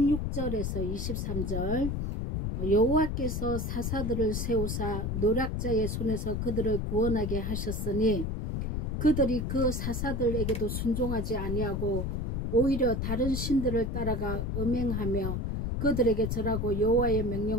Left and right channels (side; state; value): left; noise; rumble, 1 dB below the sound